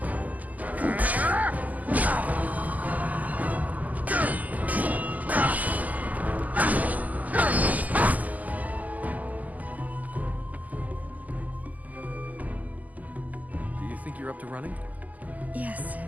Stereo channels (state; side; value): late; left; 0.079 ms